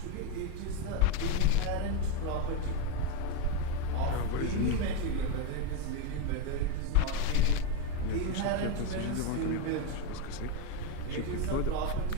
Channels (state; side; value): different; both; correlation 0.03